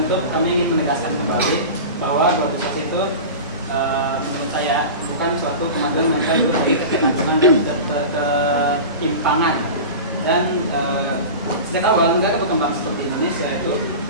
kami ingin menegaskan kembali bahwa globalisasi itu menurut saya bukan suatu kemajuan melainkan bukti ketergantungan dan ketimpangan. Dan sejak awal negara berkembang seperti Indonesia itu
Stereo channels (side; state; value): both; inverted; correlation -0.30